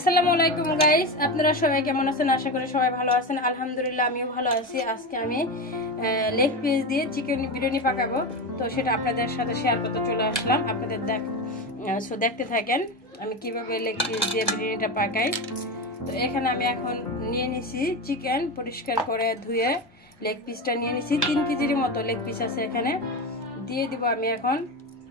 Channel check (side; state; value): both; normal; correlation 0.20